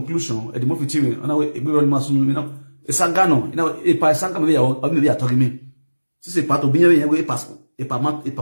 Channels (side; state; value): both; inverted; correlation -1.00